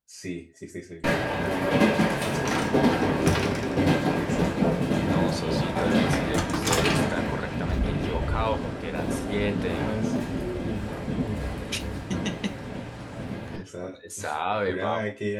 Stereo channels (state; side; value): identical; both; correlation 1.00